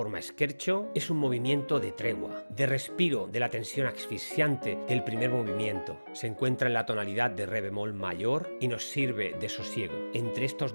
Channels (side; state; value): both; inverted; correlation -1.00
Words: scherzo. Es un movimiento de tregua, de respiro de la tensión asfixiante del primer movimiento. Se encuentra en la tonalidad de re bemol mayor y nos sirve de sosiego entre